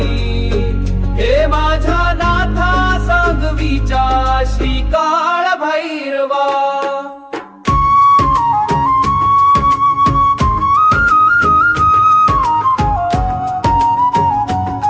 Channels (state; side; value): identical; both; correlation 1.00